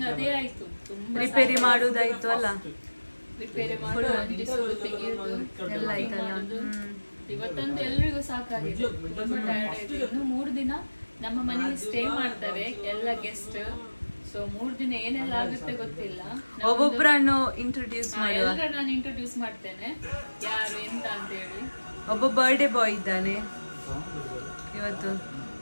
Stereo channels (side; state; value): both; inverted; correlation -1.00